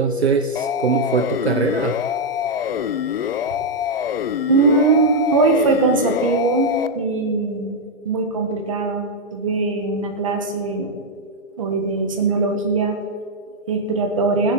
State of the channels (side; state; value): both; normal; correlation 0.00